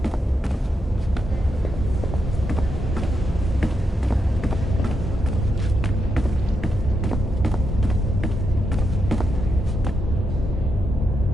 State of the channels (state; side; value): normal; both; correlation 0.83